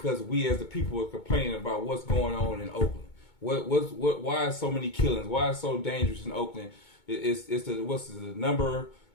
we as the people are complaining about what's going on in Oakland. Why is so many killings? Why is it so dangerous in Oakland? It's the number?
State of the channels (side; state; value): right; late; 2.2 ms